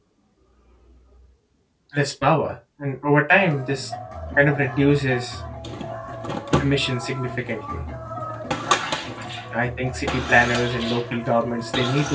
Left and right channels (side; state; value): both; identical; correlation 1.00